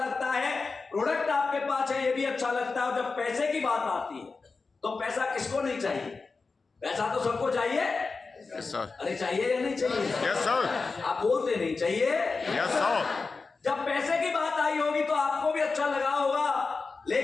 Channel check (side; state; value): right; quieter; 4.3 dB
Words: है। प्रोडक्ट आपके पास है, ये भी अच्छा लगता है। और जब पैसे की बात आती है तो पैसा किसको नहीं चाहिए? पैसा तो सबको चाहिए। यस सर, अरे चाहिए या नहीं चाहिए? यस सर, आप बोलते नहीं चाहिए। Yes sir. जब पैसे की बात आई होगी तो आपको भी अच्छा लगा होगा,